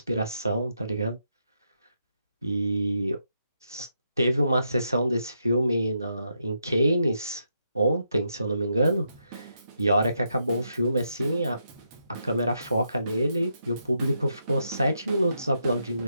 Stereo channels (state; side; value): inverted; both; correlation -0.80